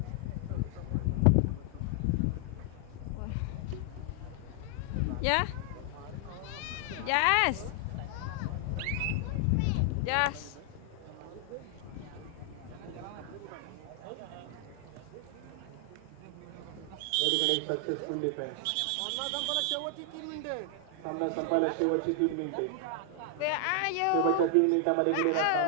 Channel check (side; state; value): both; different; correlation 0.00